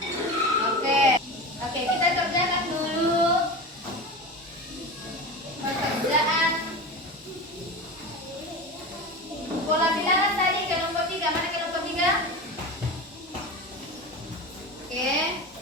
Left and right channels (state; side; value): normal; both; correlation 0.27